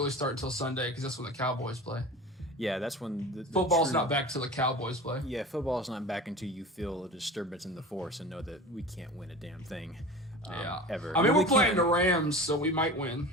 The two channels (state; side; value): normal; both; correlation 0.35